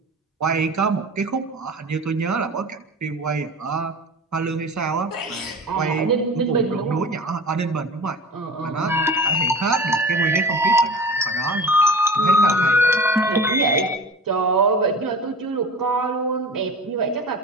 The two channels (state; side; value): normal; both; correlation 0.36